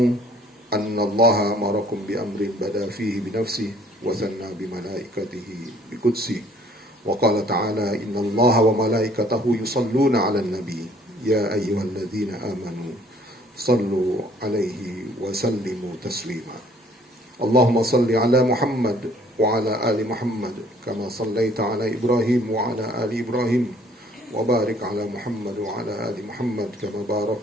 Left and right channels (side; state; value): both; normal; correlation 0.58